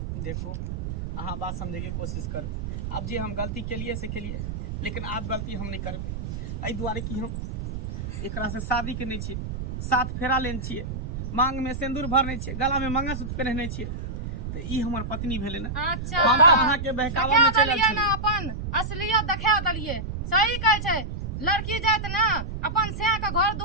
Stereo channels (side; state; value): right; noise; rumble, 5 dB below the sound